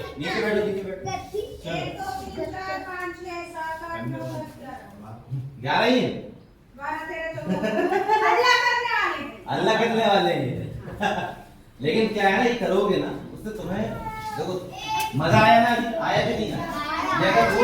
नीचे बैठो, नीचे बैठो। 11 ही है? अल्लाह करने वाले हैं। लेकिन क्या है ना, ये करोगे ना उससे तुम्हें देखो मजा आया ना, आया कि नहीं आया। ये अगर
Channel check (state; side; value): identical; both; correlation 1.00